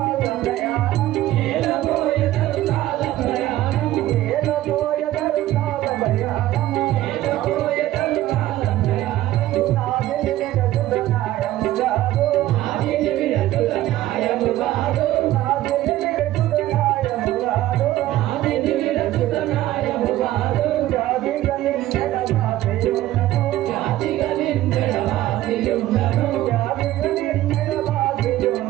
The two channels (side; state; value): left; quieter; 14.8 dB